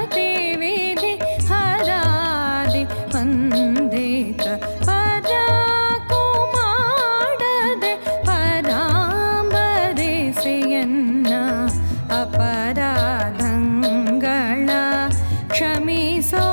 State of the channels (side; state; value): both; inverted; correlation -1.00